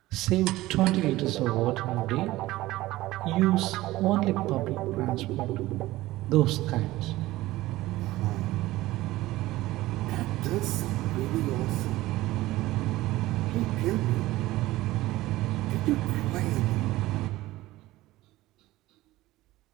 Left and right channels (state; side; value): quieter; left; 17.4 dB